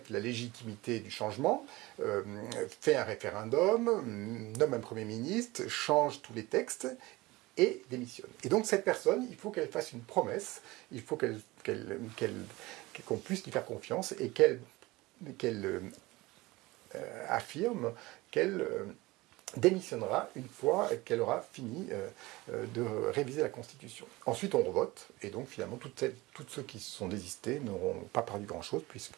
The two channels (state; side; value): quieter; left; 20.8 dB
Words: la légitimité du changement, fait un référendum, nomme un Premier ministre, change tous les textes et démissionne. Et donc cette personne, il faut qu'elle fasse une promesse, il faut qu'on puisse lui faire confiance et qu'elle affirme qu'elle démissionnera une fois qu'elle aura fini de réviser la Constitution. Ensuite, on revote, et donc finalement, tous ceux qui se sont désistés n'auront pas perdu grand-chose,